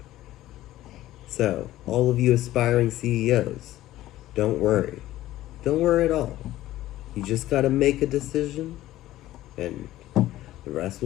So, all of you aspiring CEOs, don't worry. Don't worry at all. You just gotta make a decision, and the rest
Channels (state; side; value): quieter; right; 15.0 dB